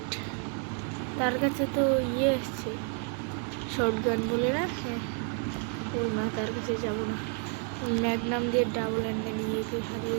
তার কাছে তো ইয়ে এসছে, শটগান বলে না। ও না, তার কাছে যাবো না। ম্যাগনাম দিয়ে ডাবল অ্যাঙ্গেল নিয়ে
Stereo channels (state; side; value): quieter; left; 35.3 dB